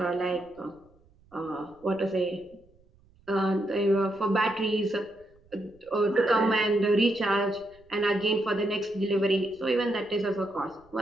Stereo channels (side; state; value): right; noise; rumble, 30 dB below the sound